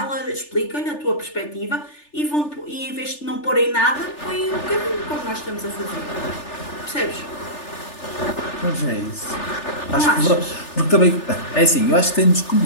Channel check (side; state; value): right; late; 3.4 ms